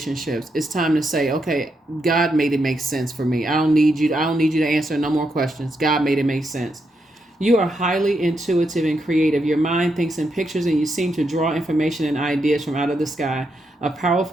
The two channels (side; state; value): both; normal; correlation 0.82